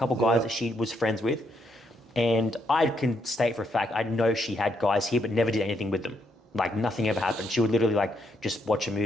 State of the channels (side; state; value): both; normal; correlation 0.76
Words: guys that she was friends with. And I can state for a fact, I know she had guys here, but never did anything with them. Like nothing ever happened. She would literally like just watch a